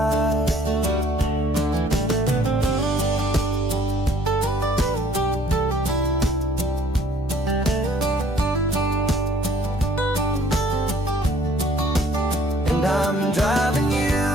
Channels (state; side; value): normal; both; correlation 0.59